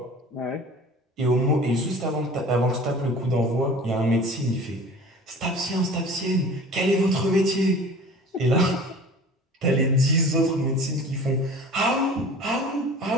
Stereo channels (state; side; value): normal; both; correlation 0.42